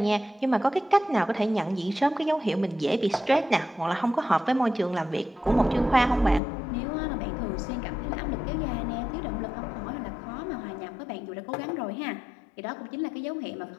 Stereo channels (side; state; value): right; drops out; at 6.4 s